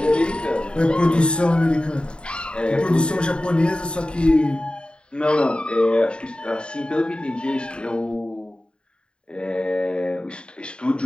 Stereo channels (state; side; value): late; right; 0.053 ms